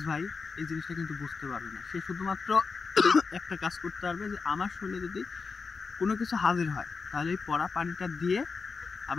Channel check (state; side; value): quieter; right; 4.8 dB